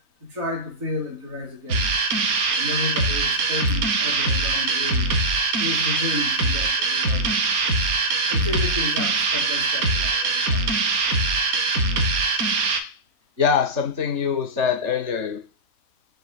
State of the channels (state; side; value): late; left; 4.2 ms